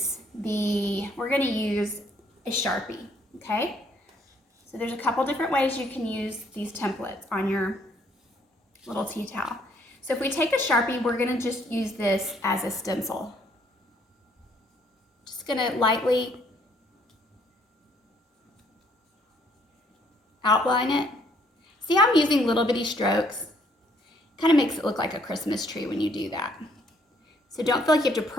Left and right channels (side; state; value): both; normal; correlation 0.66